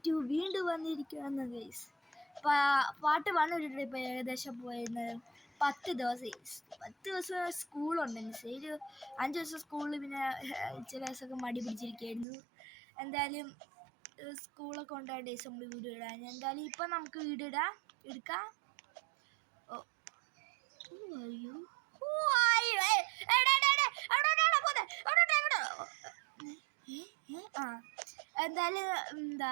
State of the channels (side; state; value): left; drops out; at 12.2 s